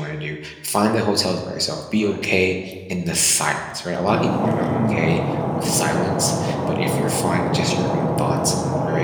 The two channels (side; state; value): both; identical; correlation 1.00